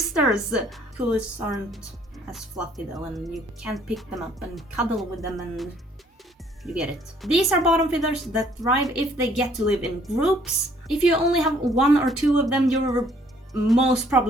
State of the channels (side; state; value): both; normal; correlation 0.62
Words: KÜHLIs aren't as fluffy though, and you can't pick them up and cuddle with them, and you get it. These are bottom feeders that thrive if they get to live in groups. If you only have 1 or 2 of them, you're most